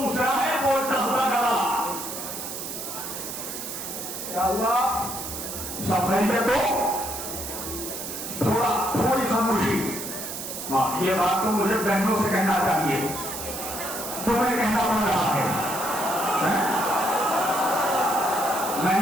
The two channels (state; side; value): noise; right; hiss, 7 dB below the sound